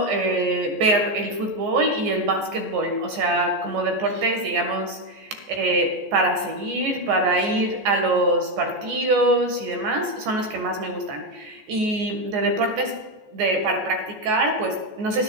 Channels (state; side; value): late; left; 14 ms